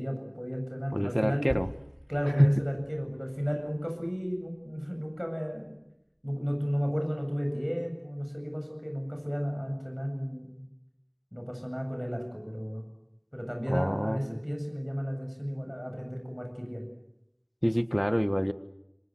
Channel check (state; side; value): identical; both; correlation 1.00